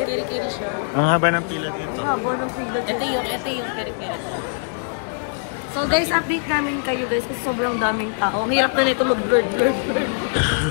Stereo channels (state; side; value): silent; right; 64 dB below the other